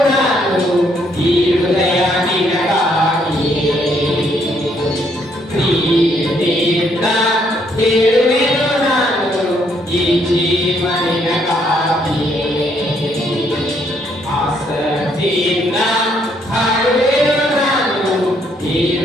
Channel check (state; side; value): normal; both; correlation 0.70